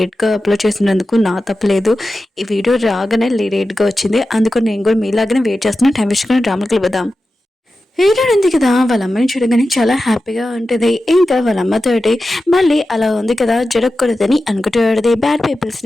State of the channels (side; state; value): both; normal; correlation 0.93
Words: అప్లోడ్ చేసినందుకు నా తప్పలేదు. ఈ వీడియో రాగానే లేట్గా వచ్చింది, అందుకు నేను కూడా మీలాగానే వెయిట్ చేస్తున్నా. టైం వేసుకుని డ్రామాకి వెళ్ళిపోదాం. హీరో ఉంది కదా వాళ్ళ అమ్మని చూడగానే చాలా హ్యాపీగా ఉంటుంది. ఇంకా వాళ్ళ అమ్మతోటి మళ్ళీ అలా ఉంది కదా జరగకూడదని అనుకుంటూ బ్యాడ్ పీపుల్స్